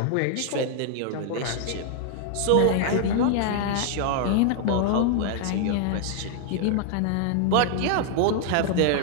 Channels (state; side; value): different; both; correlation 0.00